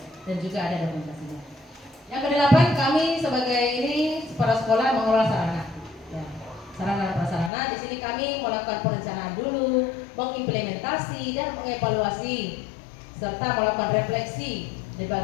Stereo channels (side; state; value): right; drops out; at 7.5 s